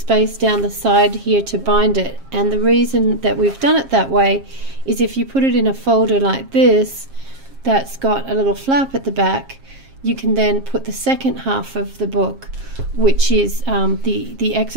down the side here to bind it, and the reason that we've done it that way is if you put it in a folder like this that's got a little flap at the back, you can then put the second half of the book, which is the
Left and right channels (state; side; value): late; left; 7.4 ms